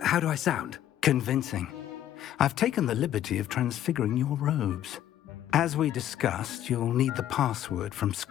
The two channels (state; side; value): quieter; right; 11.7 dB